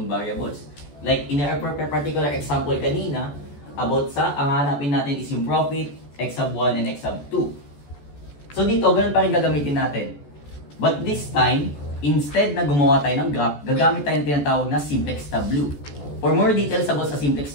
variables. Like in our particular example kanina, about sa, ang hanapin natin is yung profit, x sub 1 and x sub 2. So dito, ganun pa rin gagamitin natin. But this time, instead na gumawa tayo ng graph, gagamit tayo ng tinatawag na simplex tableau. For more details about sa simplex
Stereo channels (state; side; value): late; right; 14 ms